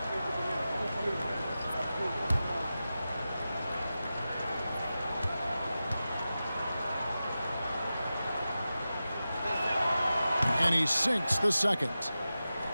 And he sinks the second.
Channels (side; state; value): both; inverted; correlation -0.93